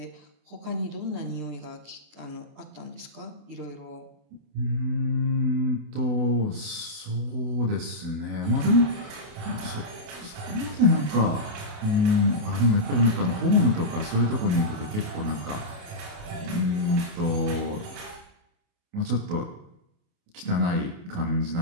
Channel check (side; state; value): left; late; 28 ms